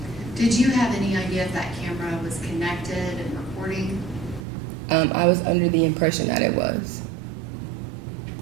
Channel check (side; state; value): left; drops out; at 4.4 s